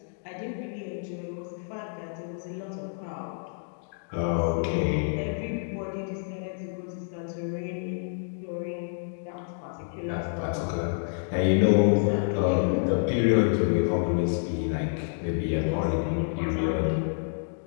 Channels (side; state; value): right; silent; digital silence